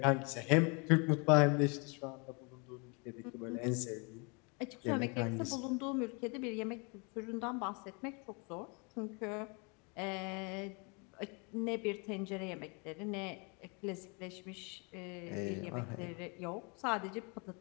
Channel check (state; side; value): quieter; right; 32.6 dB